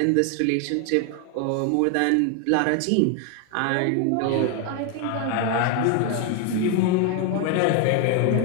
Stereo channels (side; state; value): both; different; correlation 0.01